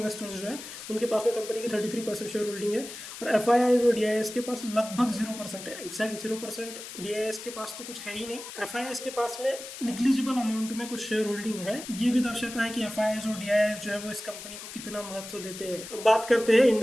जो है उनके पास में कंपनी की 33% शेयर होल्डिंग है। और FIIs और DIIs के पास लगभग 0% है, एग्जैक्ट 0%। DIIs के पास तो कुछ है ही नहीं। FIIs के पास में निग्लिजिबल अमाउंट में कुछ शेयर होल्डिंग है। ये भी दर्शाता है कि FIIs और DIIs जो है वो इस कंपनी को कितना महत्व देते हैं। अब बात करते हैं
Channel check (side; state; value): left; noise; hiss, 11 dB below the sound